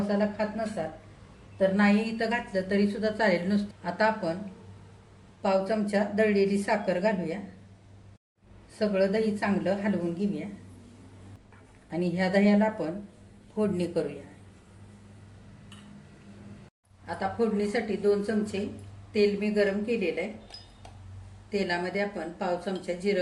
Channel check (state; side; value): identical; both; correlation 1.00